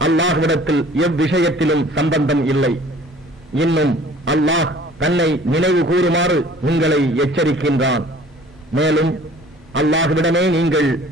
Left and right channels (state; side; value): normal; both; correlation 0.51